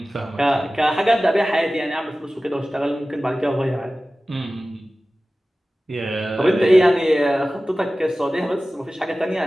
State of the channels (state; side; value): normal; both; correlation 0.96